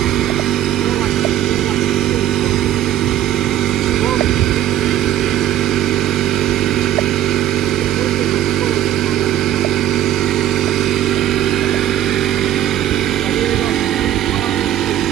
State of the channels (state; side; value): quieter; left; 12.1 dB